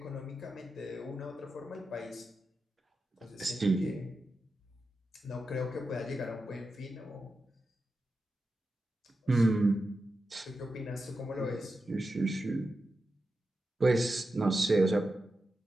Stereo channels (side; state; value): both; normal; correlation 0.90